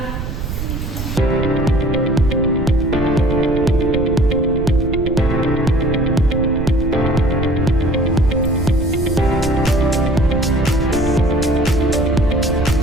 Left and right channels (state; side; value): noise; right; rumble, 5 dB below the sound